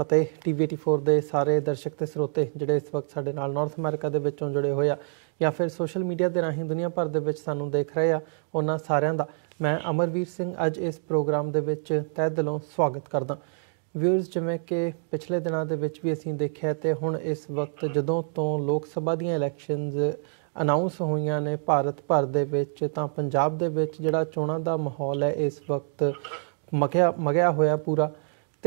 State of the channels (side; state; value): left; silent; digital silence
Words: TV84 ਦੇ ਸਾਰੇ ਦਰਸ਼ਕ ਤੇ ਸਰੋਤੇ ਜਿਹੜੇ ਇਸ ਵਕਤ ਸਾਡੇ ਨਾਲ ਨਾਰਥ ਅਮਰੀਕਾ ਦੇ ਵਿੱਚੋਂ ਜੁੜੇ ਹੋਏ ਆ ਜਾਂ ਫਿਰ ਸੋਸ਼ਲ ਮੀਡੀਆ ਦੇ ਰਾਹੀਂ ਦੁਨੀਆ ਭਰ ਦੇ ਵਿੱਚ ਸਾਨੂੰ ਦੇਖ ਰਹੇ ਆ, ਉਹਨਾਂ ਸਾਰਿਆਂ ਦਾ ਮੈਂ ਅਮਰਵੀਰ ਸਿੰਘ ਅੱਜ ਇਸ ਪ੍ਰੋਗਰਾਮ ਦੇ ਵਿੱਚ ਤਹਿ ਦਿਲੋਂ ਸਵਾਗਤ ਕਰਦਾ। ਵਿਊਅਰਸ, ਜਿਵੇਂ ਕਿ ਪਿਛਲੇ ਦਿਨਾਂ ਦੇ ਵਿੱਚ ਵੀ ਅਸੀਂ ਦੇਖਿਆ ਤੇ ਹੁਣ ਇਸ ਵਕਤ ਜਦੋਂ ਤੋਂ ਲੋਕ ਸਭਾ ਦੀਆਂ ਇਲੈਕਸ਼ਨਸ ਅਨਾਉਂਸ ਹੋਈਆਂ ਨੇ ਭਾਰਤ ਭਰ ਦੇ ਵਿੱਚ, ਤਾਂ ਪੰਜਾਬ ਦੇ ਵਿੱਚ ਜਿਹੜਾ ਚੋਣਾਂ ਦਾ ਮਾਹੌਲ ਹੈ ਇਸ ਵਕਤ ਮਗਿਆ ਹੋਇਆ ਪੂਰਾ।